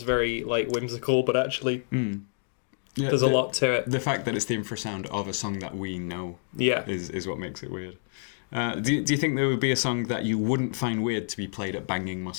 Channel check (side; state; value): right; silent; digital silence